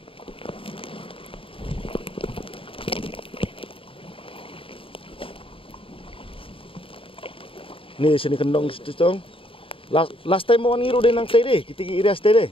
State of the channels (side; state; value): right; late; 0.26 ms